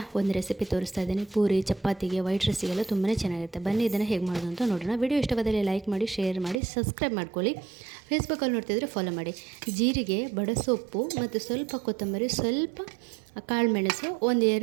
ಒಂದು ರೆಸಿಪಿ ತೋರಿಸ್ತಾ ಇದ್ದೀನಿ. ಪೂರಿ, ಚಪಾತಿಗೆ, ವೈಟ್ ರೈಸಿಗೆಲ್ಲ ತುಂಬಾ ಚೆನ್ನಾಗಿರುತ್ತೆ. ಬನ್ನಿ ಇದನ್ನು ಹೇಗೆ ಮಾಡೋದು ಅಂತ ನೋಡೋಣ. ವಿಡಿಯೋ ಇಷ್ಟವಾದಲ್ಲಿ ಲೈಕ್ ಮಾಡಿ, ಶೇರ್ ಮಾಡಿ, ಸಬ್ಸ್ಕ್ರೈಬ್ ಮಾಡ್ಕೊಳ್ಳಿ. ಫೇಸ್ಬುಕ್ಕಲ್ಲಿ ನೋಡ್ತಿದ್ರೆ ಫಾಲೋ ಮಾಡಿ. ಜೀರಿಗೆ, ಬಡಸೊಪ್ಪು ಮತ್ತು ಸ್ವಲ್ಪ ಕೊತ್ತಂಬರಿ, ಸ್ವಲ್ಪ ಕಾಳುಮೆಣಸು,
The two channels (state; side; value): drops out; left; at 6.6 s